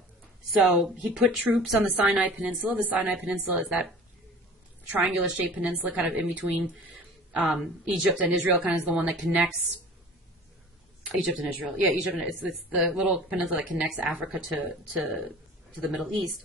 So he put troops on the Sinai Peninsula. The Sinai Peninsula is that triangular-shaped peninsula kind of in between Egypt and Israel, kind of is the one that connects Egypt and Israel. Yeah, Egypt, and it's the little peninsula that connects Africa to the Middle East.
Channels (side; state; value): both; normal; correlation 0.42